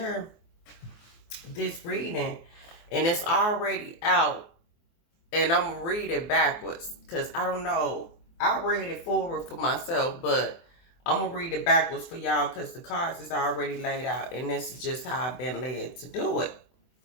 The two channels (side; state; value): right; late; 24 ms